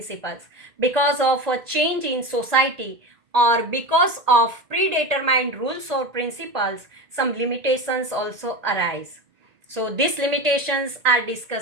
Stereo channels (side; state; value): left; late; 1.9 ms